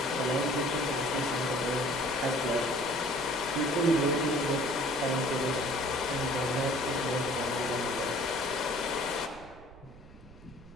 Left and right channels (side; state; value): right; noise; rumble, 20 dB below the sound